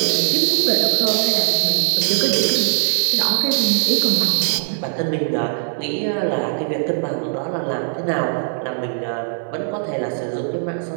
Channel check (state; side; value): silent; left; digital silence